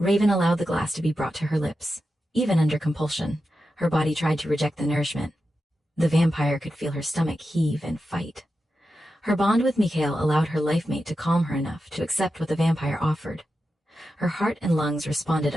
allowed the glass to be brought to her lips. Even under compulsion, her body tried to reject the nourishment. The vampire could feel her stomach heave and fight. Her bond with Mikhail allowed her life-mate to calm her enough to accept what the vampire offered. Her heart and lungs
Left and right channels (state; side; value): normal; both; correlation 0.90